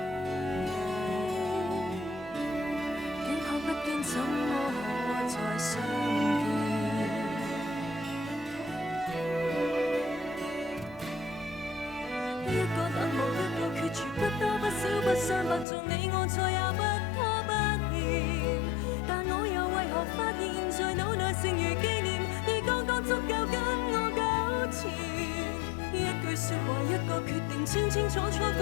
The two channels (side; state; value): right; drops out; at 15.7 s